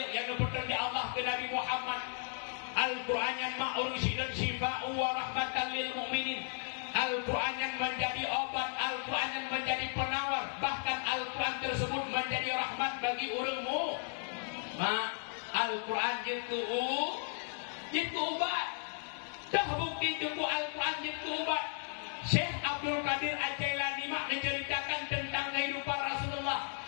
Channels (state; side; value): silent; right; 54 dB below the other